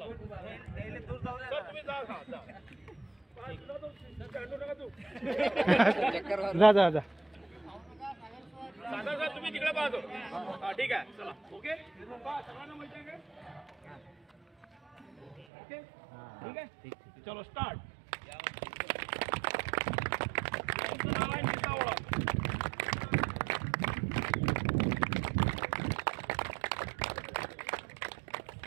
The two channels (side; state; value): left; drops out; at 15.5 s